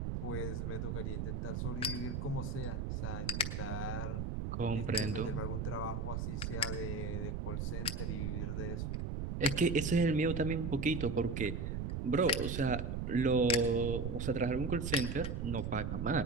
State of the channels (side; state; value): right; noise; rumble, 2 dB below the sound